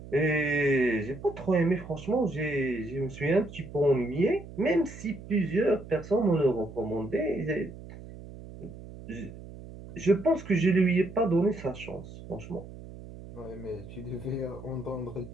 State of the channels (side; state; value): right; noise; hum, 15 dB below the sound